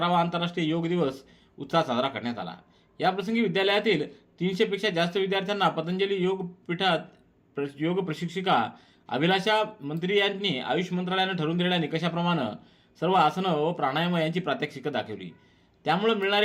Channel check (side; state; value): both; identical; correlation 1.00